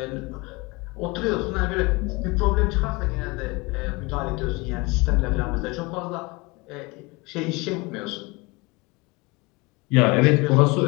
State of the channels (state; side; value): quieter; right; 25.5 dB